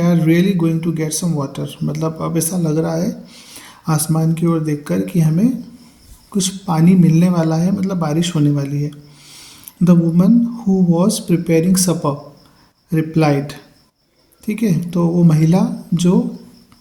really going to get some water, मतलब अब ऐसा लग रहा है आसमान की ओर देखकर कि हमें कुछ पानी मिलने वाला है, मतलब बारिश होने वाली है। The woman who was preparing supper replied, ठीक है। तो वो महिला जो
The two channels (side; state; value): both; identical; correlation 1.00